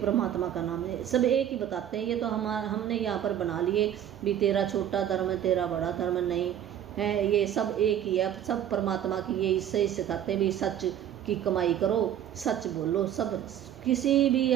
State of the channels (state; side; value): quieter; left; 10.4 dB